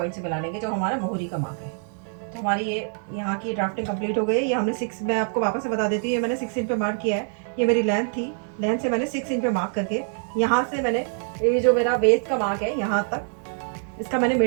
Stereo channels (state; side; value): silent; left; 55 dB below the other